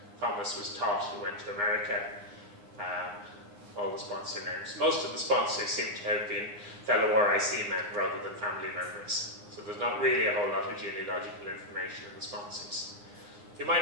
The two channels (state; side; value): late; left; 9.7 ms